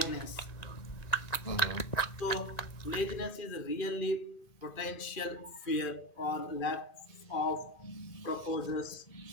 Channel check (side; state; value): right; late; 1.9 ms